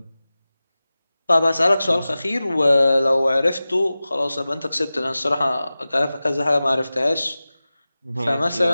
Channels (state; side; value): inverted; both; correlation -0.96